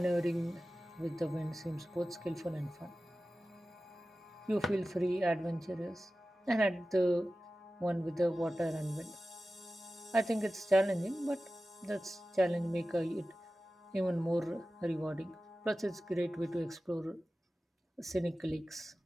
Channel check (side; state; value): both; normal; correlation 0.95